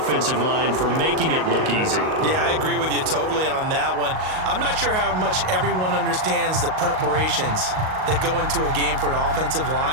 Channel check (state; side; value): late; left; 38 ms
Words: line for making it look easy. Yeah, I agree with you totally on that one. I'm not sure how much everyone understands the preparations that go into a game for an offensive